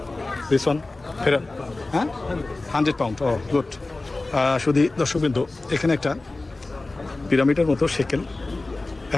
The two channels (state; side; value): quieter; right; 3.1 dB